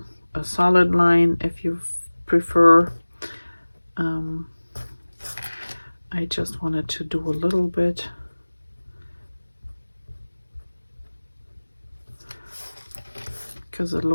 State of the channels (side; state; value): both; inverted; correlation -1.00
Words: a solid line if you prefer. I just wanted to do a little bit because it